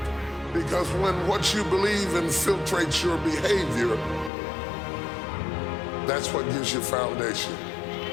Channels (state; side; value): drops out; right; at 4.3 s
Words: Because when what you believe infiltrates your behavior, that's what gives you foundation.